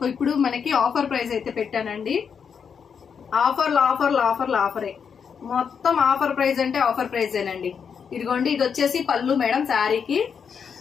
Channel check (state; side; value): quieter; right; 6.7 dB